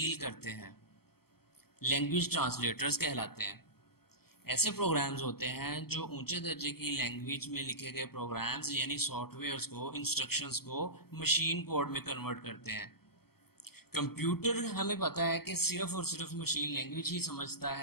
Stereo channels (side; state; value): right; late; 0.95 ms